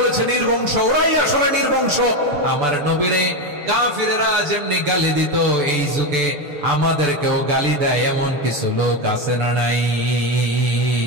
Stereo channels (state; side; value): late; left; 6.9 ms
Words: নির্বংশ, ওরাই আসলে নির্বংশ। আমার নবীরে কাফিরেরা যেমনি গালি দিত, এই যুগে আমাদেরকেও গালি দেয় এমন কিছু লোক আছে না নাই?